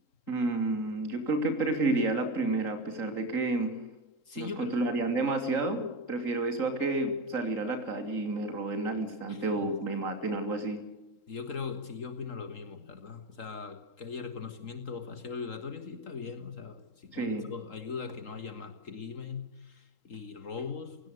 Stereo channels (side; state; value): right; late; 3.8 ms